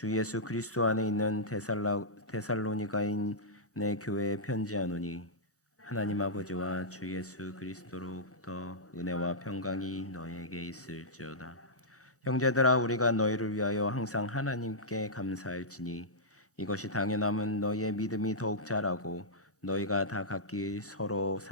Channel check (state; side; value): normal; both; correlation -0.12